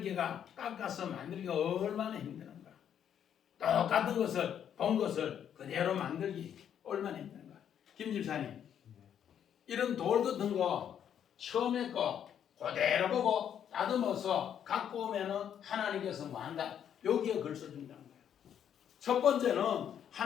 깎아서 만들기가 얼마나 힘드는가. 똑같은 것을 본 것을 그대로 만들기 얼마나 힘든가. 김 집사님, 이런 돌 같은 거 처음에 거 그대로 보고 다듬어서 갖고 오면은 하나님께서 뭐 한다. 여기에 글 써준다는 거예요. 첫 번째는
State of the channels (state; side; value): quieter; right; 9.1 dB